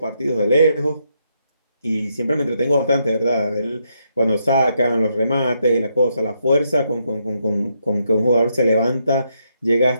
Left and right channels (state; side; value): inverted; both; correlation -0.78